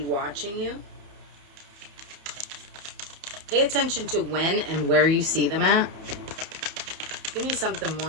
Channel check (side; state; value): left; late; 31 ms